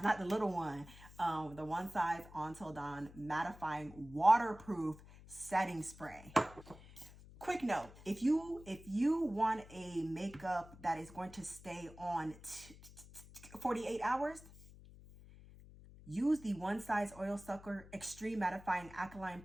not the little one. The one size Until Dawn Mattifying Waterproof Setting Spray. Quick note, if you want a makeup that is going to stay on 48 hours, use the One Size Oil Sucker Extreme Mattifying Alkaline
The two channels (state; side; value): noise; left; hum, 19 dB below the sound